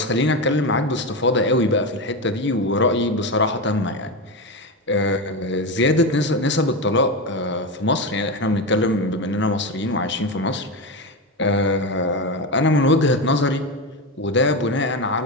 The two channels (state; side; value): normal; both; correlation 0.16